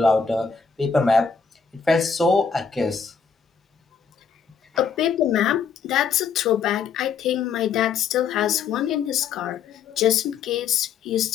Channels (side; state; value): right; quieter; 6.1 dB